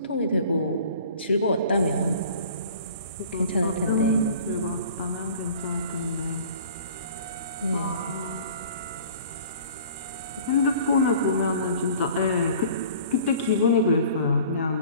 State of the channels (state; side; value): inverted; both; correlation -0.47